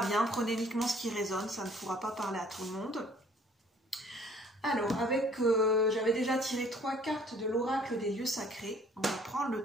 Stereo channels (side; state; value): both; normal; correlation 0.57